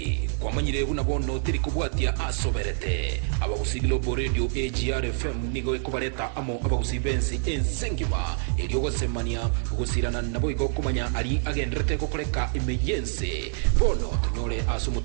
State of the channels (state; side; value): silent; left; digital silence